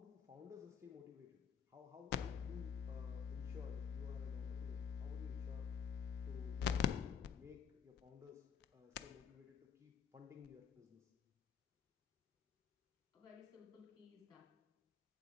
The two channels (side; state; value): right; quieter; 7.6 dB